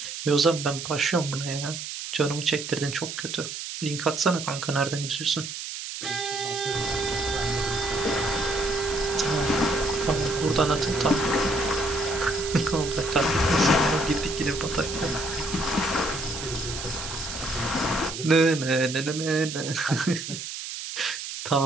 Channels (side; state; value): right; noise; hiss, 7 dB below the sound